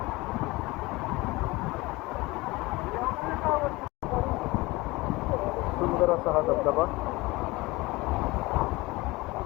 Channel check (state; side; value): quieter; right; 21.7 dB